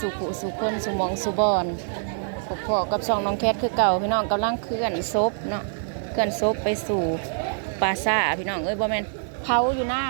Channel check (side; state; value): left; silent; digital silence